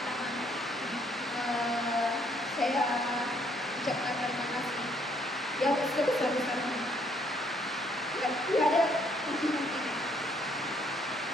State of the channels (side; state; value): both; normal; correlation 0.67